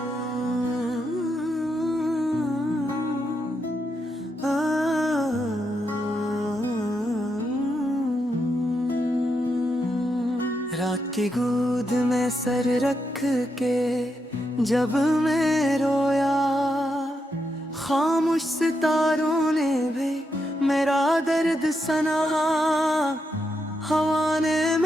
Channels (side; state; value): both; normal; correlation 0.83